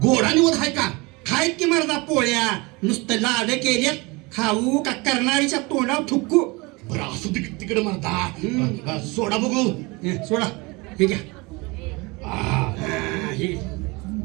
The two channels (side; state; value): left; quieter; 25.5 dB